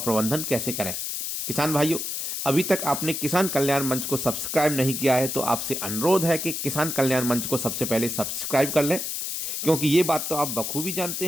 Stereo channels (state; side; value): noise; left; hiss, 3 dB below the sound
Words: कैसे करें। किसान भाइयों, अभी तक आपने किसान कल्याण मंच को सब्सक्राइब नहीं किया है तो आपसे अनुरोध है कि किसान कल्याण मंच को सबसे पहले सब्सक्राइब कर लें, क्योंकि ये बात तो आप बखूबी